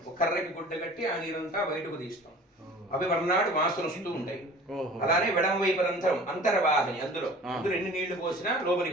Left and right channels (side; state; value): both; normal; correlation 0.44